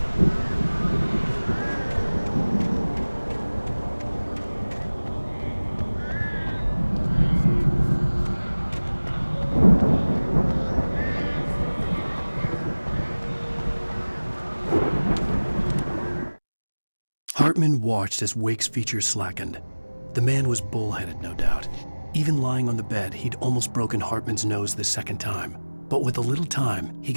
Hartman watched as Wake's features slackened. The man was bullheaded, no doubt. Even lying on the bed, he'd almost broken Hartman's nose the second time. But with a little time, he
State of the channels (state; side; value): inverted; both; correlation -1.00